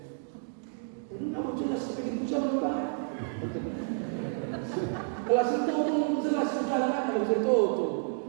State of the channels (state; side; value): silent; left; digital silence